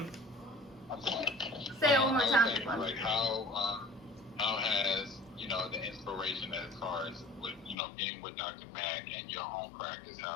I'm sorry. Say it one more time. Like how has the inspiration as far as with being with Dr. Mack and your own practice,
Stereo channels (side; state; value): right; drops out; at 7.8 s